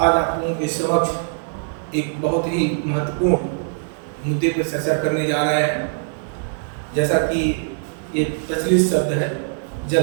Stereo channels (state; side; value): silent; left; digital silence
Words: आप लोगों के समक्ष एक बहुत ही महत्वपूर्ण मुद्दे पर चर्चा करने जा रहे हैं। जैसा कि ये प्रचलित शब्द है